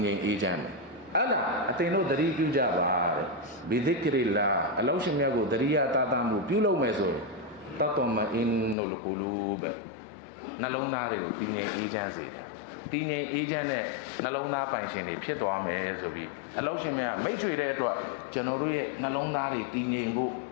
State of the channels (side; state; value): right; drops out; at 8.8 s